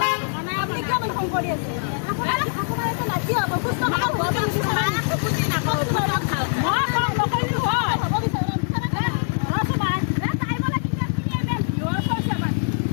Apne kya mana hong kori ase? Apna eta nachi abo kusto ma baba ni sara. Nakok tu bara. Ma ko lo ko ni ho.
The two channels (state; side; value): silent; right; 56 dB below the other